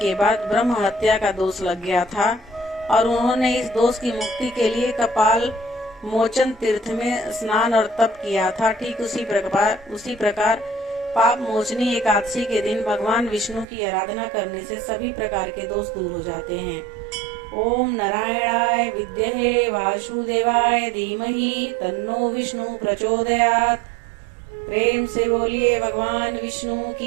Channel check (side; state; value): left; drops out; at 13.7 s